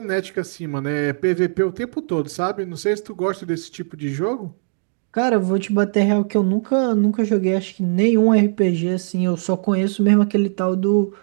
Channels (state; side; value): silent; left; digital silence